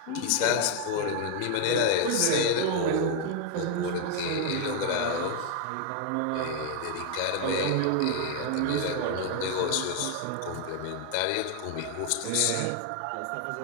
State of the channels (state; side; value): different; both; correlation 0.00